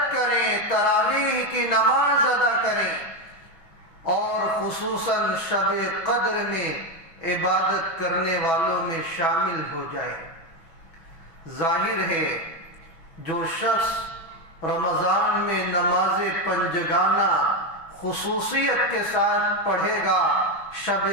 کریں، تراویح کی نماز ادا کریں، اور خصوصاً شب قدر میں عبادت کرنے والوں میں شامل ہو جائے۔ ظاہر ہے جو شخص رمضان میں نماز پنجگانہ خصوصیت کے ساتھ پڑھے گا، شب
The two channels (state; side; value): late; right; 6.1 ms